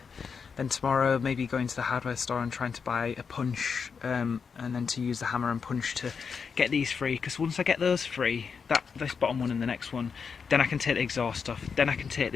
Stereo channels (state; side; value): quieter; right; 5.9 dB